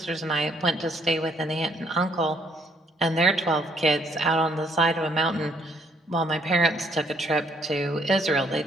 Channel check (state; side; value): normal; both; correlation 0.68